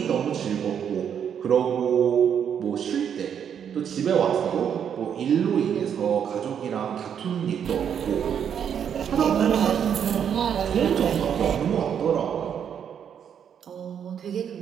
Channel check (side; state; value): left; quieter; 8.3 dB